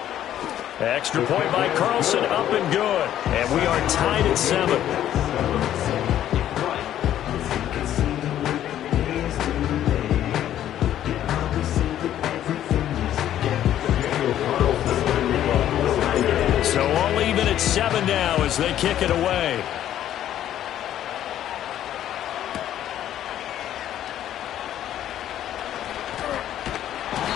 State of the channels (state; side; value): quieter; right; 11.6 dB